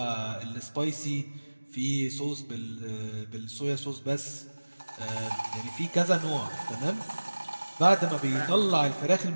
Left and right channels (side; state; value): both; inverted; correlation -1.00